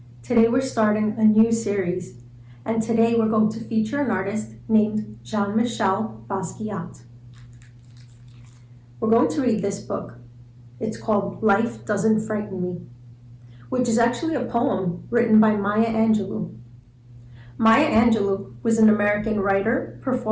Today we're starting a new series, and today we're going to feature an artist named Jean-Michel Basquiat. We're going to read this book. It's called Life Doesn't Frighten Me, which is actually a poem written by Maya Angelou. Maya Angelou was an American writer,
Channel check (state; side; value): identical; both; correlation 1.00